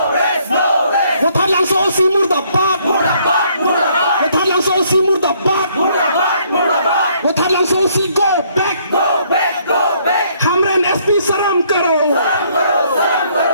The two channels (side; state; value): both; inverted; correlation -0.66